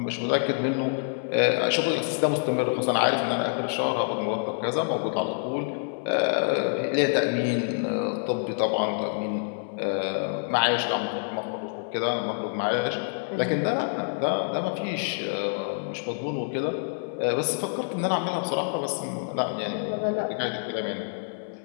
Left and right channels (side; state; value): right; silent; 60 dB below the other